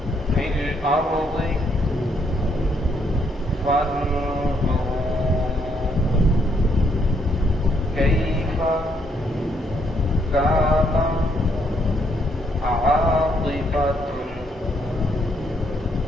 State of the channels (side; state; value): both; normal; correlation 0.72